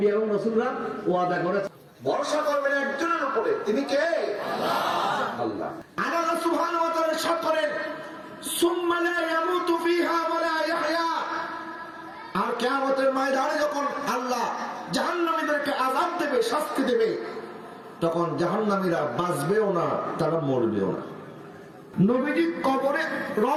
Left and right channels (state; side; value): identical; both; correlation 1.00